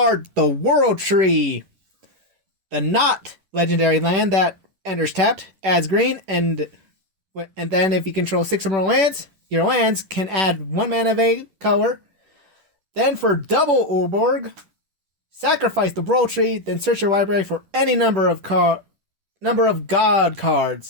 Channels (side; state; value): left; late; 11 ms